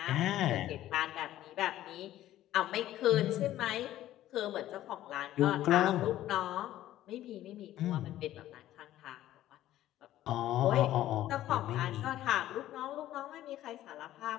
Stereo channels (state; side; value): quieter; right; 13.6 dB